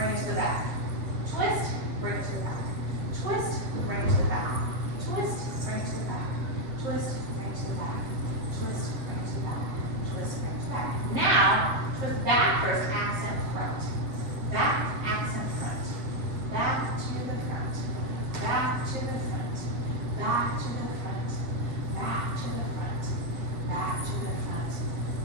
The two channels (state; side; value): late; left; 7.3 ms